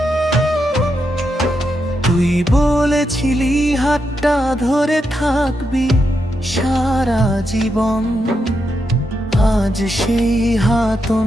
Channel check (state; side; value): normal; both; correlation 0.84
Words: তুই বলেছিলি হাতটা ধরে থাকবি সারা জীবন, আজ সেই হাত